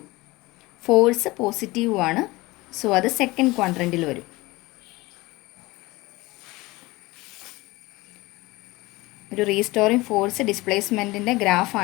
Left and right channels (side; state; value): right; quieter; 21.2 dB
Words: ഫോഴ്സ് പോസിറ്റീവുമാണ്. സോ അത് സെക്കൻഡ് ക്വാഡ്രൻറ്റിൽ വരും. ഒരു റീസ്റ്റോറിങ് ഫോഴ്സ് ഡിസ്പ്ലേസ്മെൻറ്റിൻ്റെ